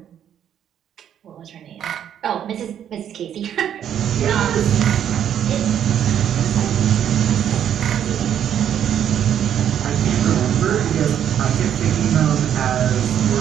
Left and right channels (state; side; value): quieter; left; 9.6 dB